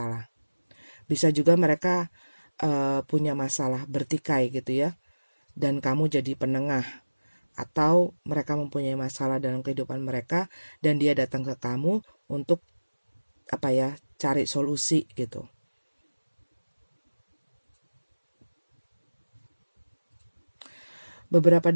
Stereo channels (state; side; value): inverted; both; correlation -1.00